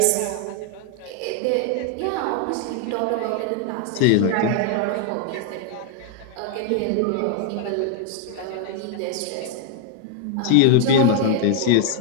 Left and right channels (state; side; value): different; both; correlation 0.00